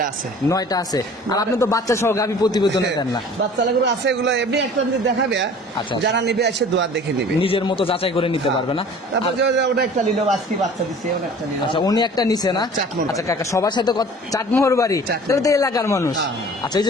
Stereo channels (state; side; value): normal; both; correlation 0.46